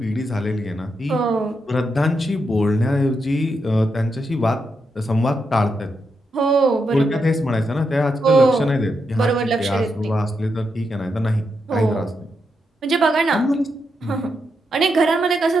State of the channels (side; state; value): both; normal; correlation 0.83